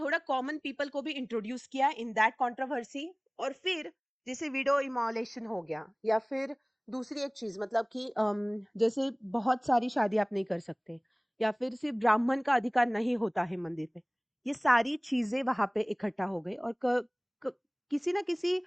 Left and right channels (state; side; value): identical; both; correlation 1.00